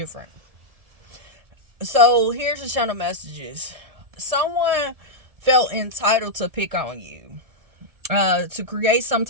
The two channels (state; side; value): late; left; 1.7 ms